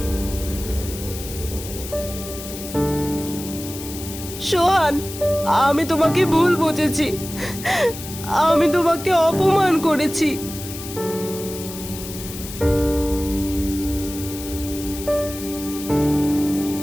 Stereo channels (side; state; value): left; noise; hiss, 11 dB below the sound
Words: সোহান, আমি তোমাকে ভুল বুঝেছি। আমি তোমাকে অপমান করেছি।